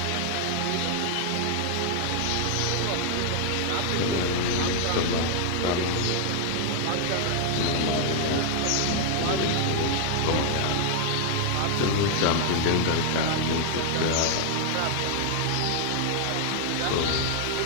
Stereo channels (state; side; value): different; both; correlation 0.00